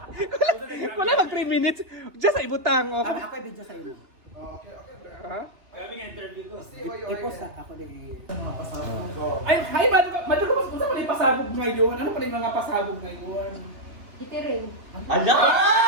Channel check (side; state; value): left; late; 2.6 ms